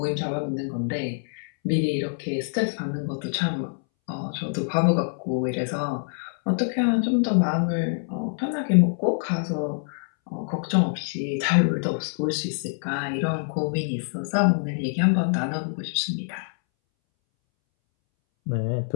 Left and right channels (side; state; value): right; silent; 61 dB below the other